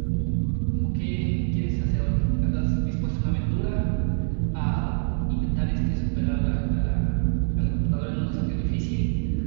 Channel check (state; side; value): silent; left; digital silence